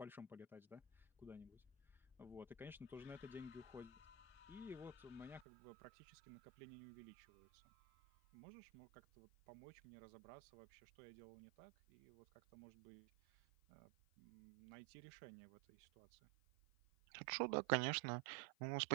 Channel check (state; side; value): drops out; left; at 5.5 s